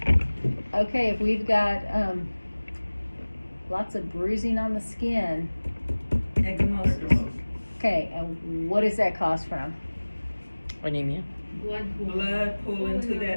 Okay, if we've got lots of bruising on the skin, Ecchymosis. okay, and what does that cause from? Anemia. Blood pooling to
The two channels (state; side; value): inverted; both; correlation -1.00